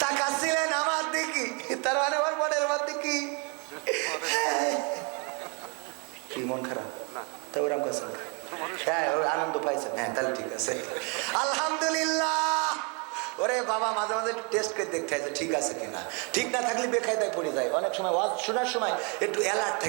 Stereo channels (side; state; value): left; quieter; 34.7 dB